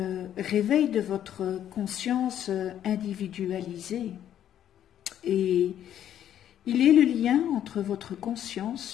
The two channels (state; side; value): quieter; right; 10.6 dB